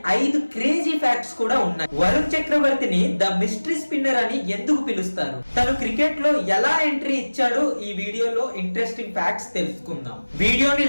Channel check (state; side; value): inverted; both; correlation -1.00